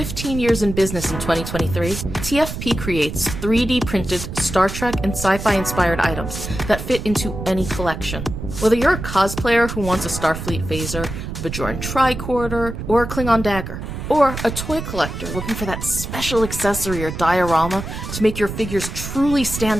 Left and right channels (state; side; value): noise; right; rumble, 7 dB below the sound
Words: years in business in 2023, TFP creates 3D printed Star Trek and sci-fi inspired items that fit into any collection. Whether you're a cosplayer who wants a Starfleet phaser, a Bajoran tricorder, or a Klingon dagger, or a toy collector looking for that special accessory or diorama to make your figures truly